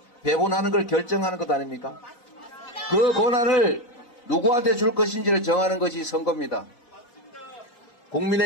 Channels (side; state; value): right; late; 4.0 ms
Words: 배분하는 걸 결정하는 것 아닙니까? 그 권한을 누구한테 줄 것인지를 정하는 것이 선거입니다.